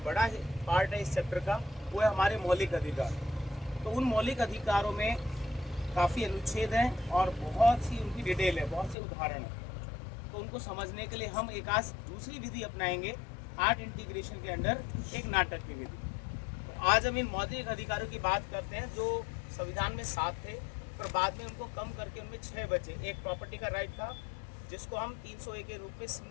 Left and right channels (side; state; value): right; drops out; at 9.0 s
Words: बड़ा पार्ट है इस चैप्टर का, वो है हमारे मौलिक अधिकार। तो उन मौलिक अधिकारों में काफ़ी अनुच्छेद हैं और बहुत सी उनकी डिटेल है, बहुत से उदाहरण हैं। तो उनको समझने के लिए हम एक आज दूसरी विधि अपनाएंगे आर्ट इंटीग्रेशन के अंडर, एक नाटक की विधि। तो आज हम इन मौलिक अधिकारों की बात करते हैं जो संविधान में 7 थे, पर बाद में उनको कम करके उनमें 6 बचे। एक प्रॉपर्टी का राइट था, जिसको हम 301 के रूप में